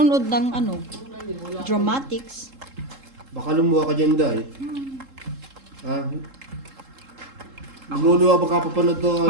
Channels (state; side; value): late; left; 3.7 ms